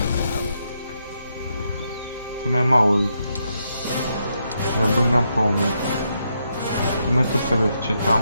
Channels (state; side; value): inverted; both; correlation -0.80